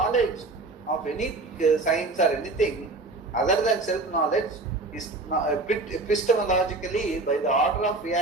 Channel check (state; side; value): quieter; left; 3.3 dB